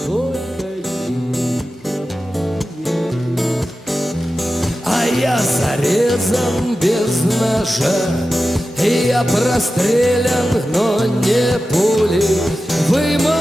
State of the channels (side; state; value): both; normal; correlation 0.93